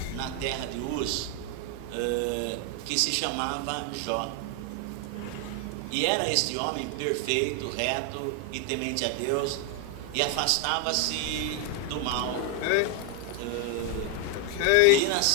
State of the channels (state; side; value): different; both; correlation 0.01